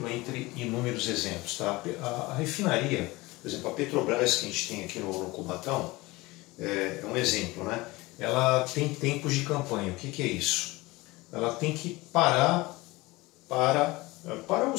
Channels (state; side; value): quieter; right; 21.5 dB